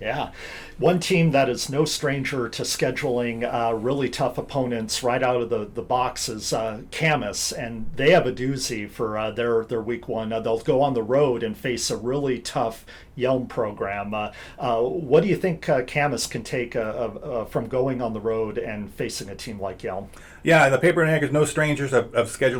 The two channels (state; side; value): identical; both; correlation 1.00